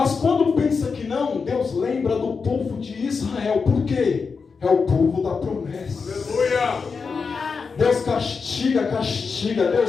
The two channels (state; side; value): quieter; right; 5.2 dB